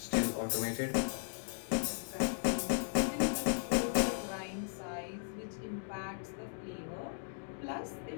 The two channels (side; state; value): right; silent; digital silence